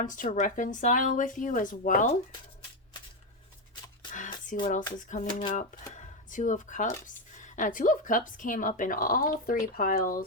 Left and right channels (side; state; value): both; normal; correlation 0.08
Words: to reconcile with you as well. Let's see what else is coming up. 2 of Cups. 2 of Cups came up in all 3